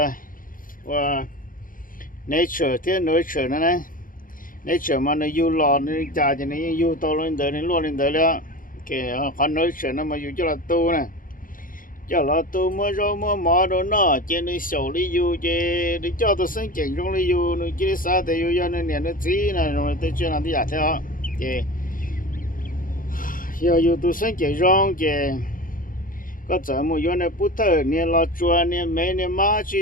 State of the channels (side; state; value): right; late; 0.40 ms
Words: và nature thế nature nó này nature mà nó yêu lò nó trả cho nó yêu to lên đời nó luôn lên đời đó cái con nature nó mà yêu cho là tu nè cho là tu mới rồi mới mò đồ nó trên nó sầu đi yêu để cho tôi sinh trưởng trong đi yêu nó chỉ sao thì yêu cho nên nó chỉ là rồi tôi chưa làm gì cả theo thì yêu tôi sinh trưởng trong thì có giờ một yêu này bút thơ nè lo chua nè mấy nè má